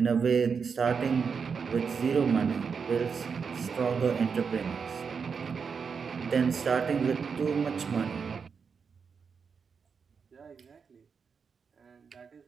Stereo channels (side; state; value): left; quieter; 5.9 dB